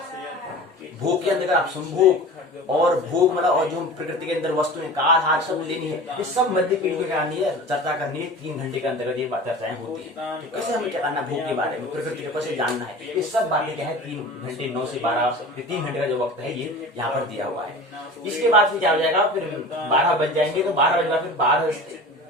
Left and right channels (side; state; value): both; normal; correlation 0.36